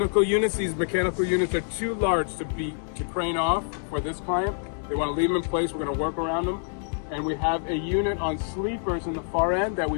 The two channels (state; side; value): silent; right; digital silence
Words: units. These mechanical units are too large to crane off for this client. They want to leave them in place. We're going to work around them. And we have a unit on sleepers in the far end that